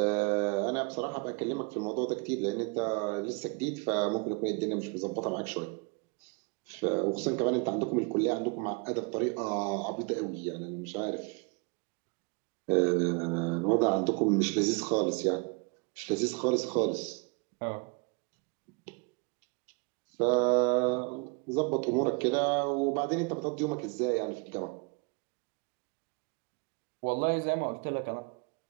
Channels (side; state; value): left; quieter; 32.2 dB